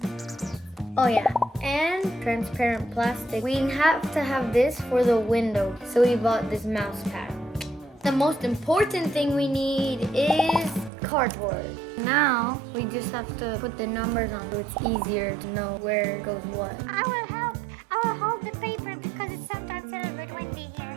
Oh yeah, and transparent plastic. We have to have this for the window, so we bought this mouse pad. The most important thing we need is cardboard. Now we just have to put the numbers on so it's easier to know where goes what. I will help. I will hold the paper because it's sometimes a little bit windy here.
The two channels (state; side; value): drops out; left; at 10.9 s